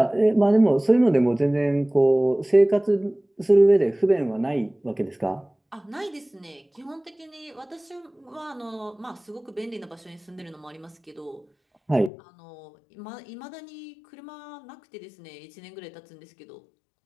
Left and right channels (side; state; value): right; drops out; at 12.1 s